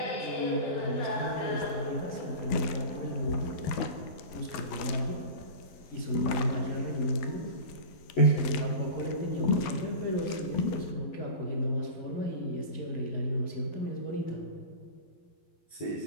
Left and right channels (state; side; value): late; right; 12 ms